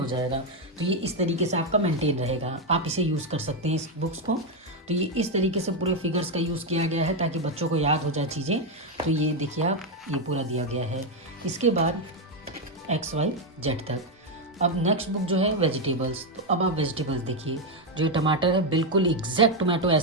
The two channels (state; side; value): normal; both; correlation 0.04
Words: जाएगा। तो ये इस तरीके से आपका मेंटेन रहेगा, आप इसे यूज़ कर सकते हैं इस बुक्स को। तो ये इस तरीके से पूरे फिगर्स का यूज़ किया गया है ताकि बच्चों को याद हो जाए चीज़ें। तो ये देखिए आप, ये पूरा दिया गया है। इसके बाद XYZ तक। अब नेक्स्ट बुक जो है वेजिटेबल्स। तो अब आप वेजिटेबल्स देखिए, जो टमाटर है बिल्कुल एग्जैक्ट टोमेटो